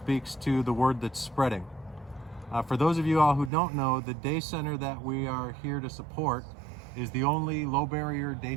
to the word that's spreading. For those of you all who don't know, the day center that we are here to support is the only low barrier day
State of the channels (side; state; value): left; drops out; at 3.5 s